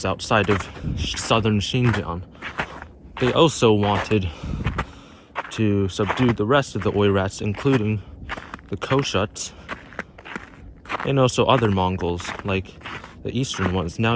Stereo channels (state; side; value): identical; both; correlation 1.00